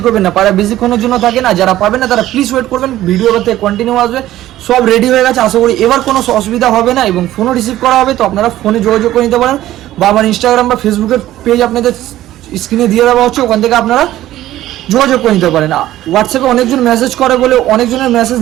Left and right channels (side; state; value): left; quieter; 14.2 dB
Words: করবেন না। পায়রা বেশিক্ষণের জন্য থাকে না, যারা পাবেন না তারা প্লিজ ওয়েট করবেন। ভিডিও থেকে কন্টিনিউ আসবে, সব রেডি হয়ে গেছে, আশা করি এবার কোনো অসুবিধা হবে না এবং ফোনও রিসিভ করা হবে। তো আপনারা ফোনে যোগাযোগ করে নিতে পারেন, বা আমার ইনস্টাগ্রাম বা ফেসবুকের পেজ আপনাদের স্ক্রিনে দিয়ে দেওয়া হচ্ছে, ওখান থেকে আপনারা যোগাযোগ করে নিতে পারেন। হোয়াটসঅ্যাপে অনেকজন মেসেজ করে বলে অনেকজনের মেসেজ